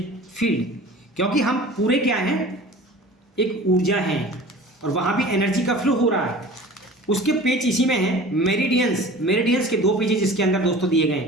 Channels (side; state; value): both; normal; correlation 0.41